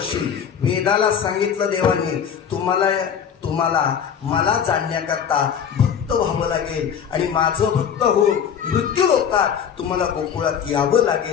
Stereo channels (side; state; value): right; quieter; 7.9 dB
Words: वेदाला सांगितलं देवाने, तुम्हाला मला जाणण्याकरता भक्त व्हावं लागेल आणि माझं भक्त होऊन मृत्यू लोकात तुम्हाला गोकुळात यावं